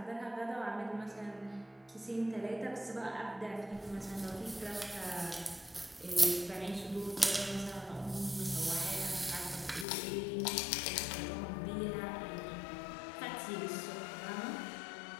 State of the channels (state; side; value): drops out; right; at 9.9 s